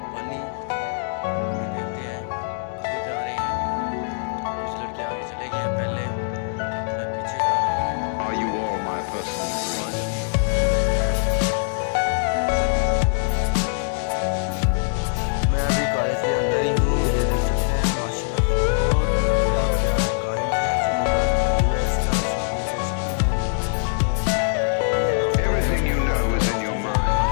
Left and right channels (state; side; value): silent; right; 63 dB below the other